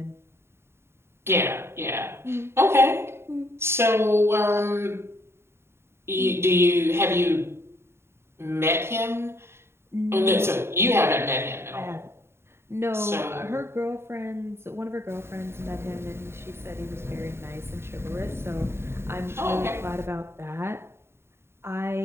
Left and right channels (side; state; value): left; late; 0.12 ms